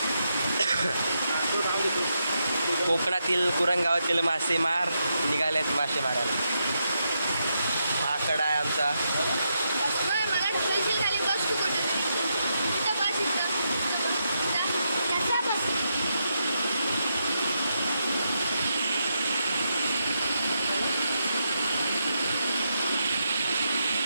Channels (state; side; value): inverted; both; correlation -0.83